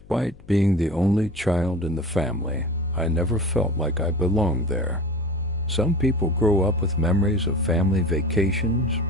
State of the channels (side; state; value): left; noise; hum, 23 dB below the sound